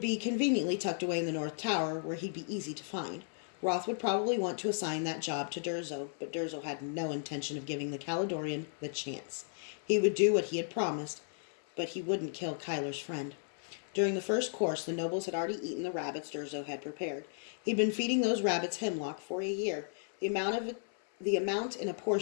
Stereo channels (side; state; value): right; silent; 55 dB below the other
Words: conveniently tucked away in the North Tower where he'd be easy to find. Roth would probably want to assign that job to Durzo, but Durzo had no intention of giving the Caledonian the chance. He would do what he had promised, but he wouldn't kill Kyler's friend. During the first course, the nobles had already eaten the rabbits Durzo had prepared. He'd been feeding those rabbits hemlock for a year. The amount in a